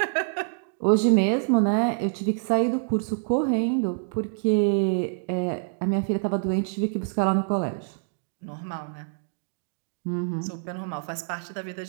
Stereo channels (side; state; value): left; silent; digital silence